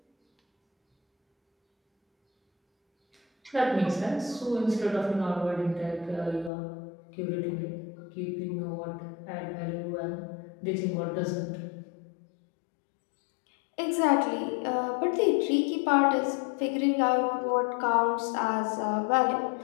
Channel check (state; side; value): drops out; right; at 6.5 s